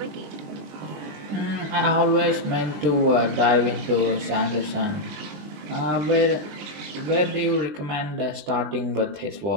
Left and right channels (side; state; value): left; late; 20 ms